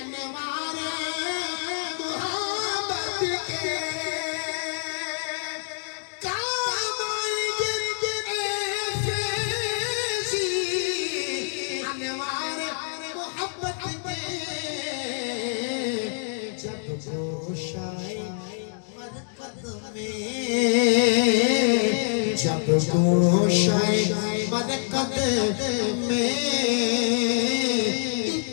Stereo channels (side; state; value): right; silent; digital silence